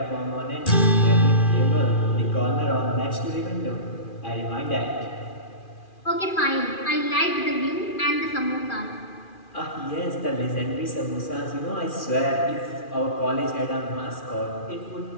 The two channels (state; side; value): late; right; 2.4 ms